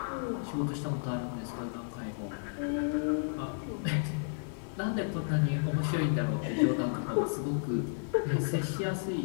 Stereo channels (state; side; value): silent; right; 55 dB below the other